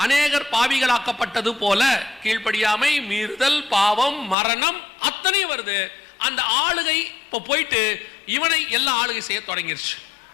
அநேகர் பாவிகளாக்கப்பட்டது போல. கீழ்ப்படியாமை, மீறுதல், பாவம், மரணம் அத்தனை வருது. அந்த ஆளுகை இப்ப போயிட்டு இவனை எல்லா ஆளுகை செய்ய தொடங்கிருச்சு.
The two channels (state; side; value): drops out; right; at 4.4 s